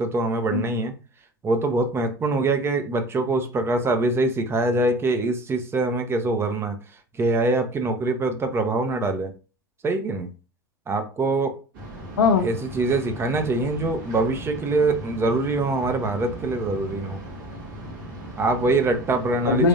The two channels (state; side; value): normal; both; correlation 0.41